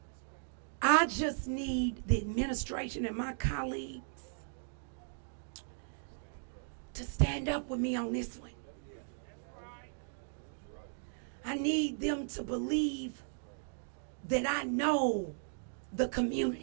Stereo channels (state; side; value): silent; left; digital silence